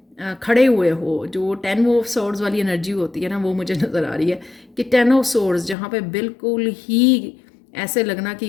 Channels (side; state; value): right; drops out; at 5.8 s